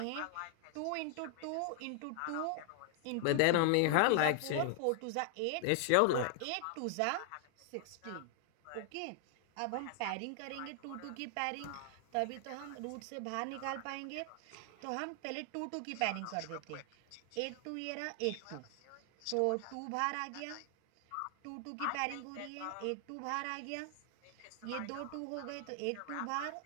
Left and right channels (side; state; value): both; different; correlation 0.00